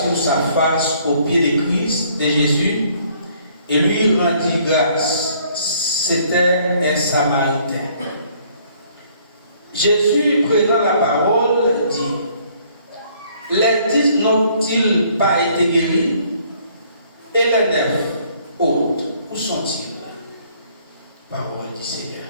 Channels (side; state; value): both; inverted; correlation -0.62